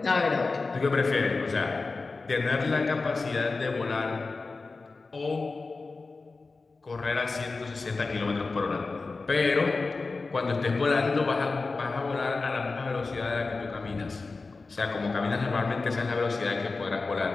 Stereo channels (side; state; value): right; quieter; 3.9 dB